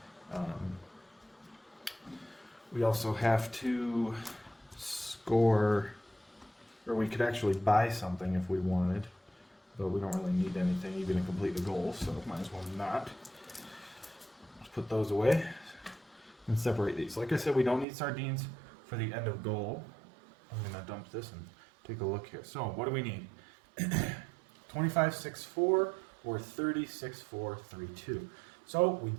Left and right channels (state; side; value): drops out; left; at 17.9 s